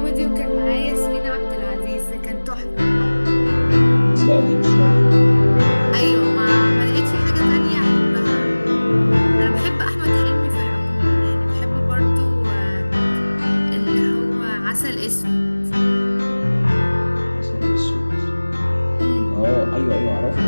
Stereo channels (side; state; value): both; inverted; correlation -1.00